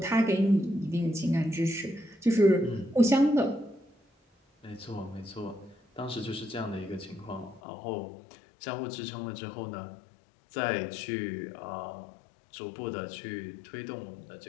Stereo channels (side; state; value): right; drops out; at 7.6 s